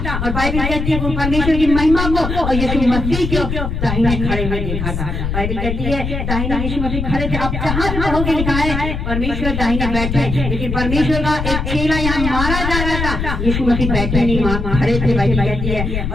और बाइबल कहती है वो परमेश्वर की महिमा को और यीशु मसीह को दाहिने खड़े हुए देखा था। बाइबल कहती है दाहिने यीशु मसीह खड़े थे। अब जहाँ पढ़ोगे लिखा है परमेश्वर दाहिने बैठे, लेकिन परमेश्वर का एक चेला यहाँ मारा जा रहा था, यीशु मसीह बैठे नहीं, खड़े थे। बाइबल कहती है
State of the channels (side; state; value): left; noise; rumble, 3 dB below the sound